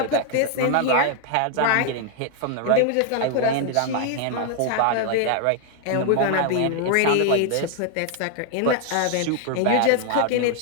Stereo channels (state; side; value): different; both; correlation 0.00